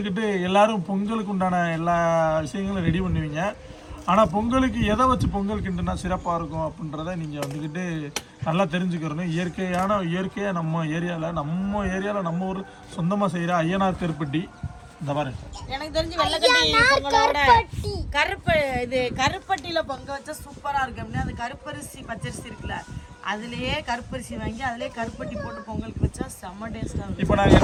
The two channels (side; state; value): both; identical; correlation 1.00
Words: எல்லாரும் பொங்கலுக்கு உண்டான எல்லா விஷயங்களும் ரெடி பண்ணுவீங்க. ஆனால் பொங்கலுக்கு எதை வச்சு பொங்கல் கிண்டுனா சிறப்பாக இருக்கும் அப்படின்றத நீங்கள் வந்துக்கிட்டு நல்லா தெரிஞ்சுக்கிறணும். இயற்கையாக நம்ம ஏரியாவில் நம்ம ஊர் சொந்தமாக செய்கிற ஐயனார் கருப்பட்டி. இந்த மாதிரி எனக்கு தெரிஞ்சு வெள்ளக்கட்டி பொங்கலோட கருப்பட்டியில பொங்க வச்சா சூப்பரா இருக்கு. அப்படின்னா அந்த கருப்பரிசி பச்சரிசி இருக்குல்ல, அதுலயே கருப்பரிசி வாங்கி அதுலயே கருப்பட்டி போட்டு பொங்கலுக்கு வச்சா செம்ம டேஸ்டா இருக்கும். இப்போ நாங்கள்